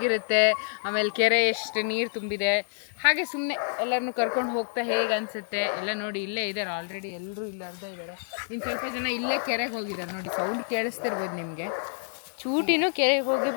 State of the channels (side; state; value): right; silent; digital silence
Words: ಆಮೇಲೆ ಕೆರೆ ಎಷ್ಟು ನೀರು ತುಂಬಿದೆ, ಹಾಗೆ ಸುಮ್ಮನೆ ಎಲ್ಲರನ್ನು ಕರ್ಕೊಂಡು ಹೋಗ್ತಾ ಹೇಗೆ ಅನಿಸುತ್ತೆ ಎಲ್ಲ ನೋಡಿ. ಇಲ್ಲೇ ಇದ್ದಾರೆ ಆಲ್ರೆಡಿ, ಎಲ್ಲರೂ ಇಲ್ಲಿ ಅರ್ಧ ಇದ್ದಾರೆ. ಇನ್ನು ಸ್ವಲ್ಪ ಜನ ಇಲ್ಲೇ ಕೆರೆಗೆ ಹೋಗಿದ್ದಾರೆ ನೋಡಿ, ಸೌಂಡ್ ಕೇಳಿಸ್ತಿರ್ಬೋದು ನಿಮಗೆ. ಚೂಟಿನೂ ಕೆರೆಗೆ ಹೋಗಿ